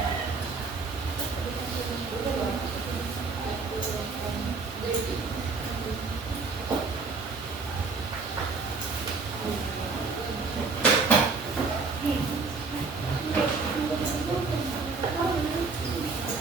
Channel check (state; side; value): quieter; left; 4.2 dB